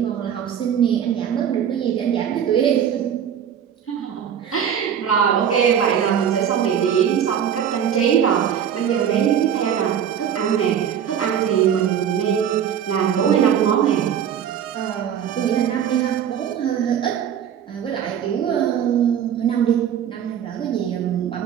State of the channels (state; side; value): quieter; left; 8.8 dB